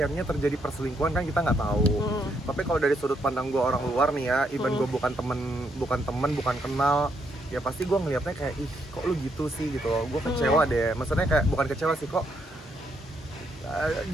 terjadi perselingkuhan, kan kita nggak tahu. Tapi kalau dari sudut pandang gue orang luar nih ya, even gue bukan temen kenal, ya pasti gue ngelihatnya kayak, ih kok lu gitu sih gitu loh. Gue kecewa deh, maksudnya kayak bukan kecewa sih, kok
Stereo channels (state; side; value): normal; both; correlation 0.75